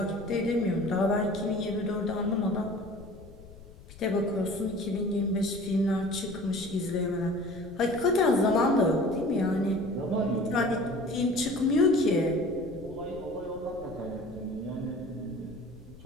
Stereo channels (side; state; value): left; noise; rumble, 19 dB below the sound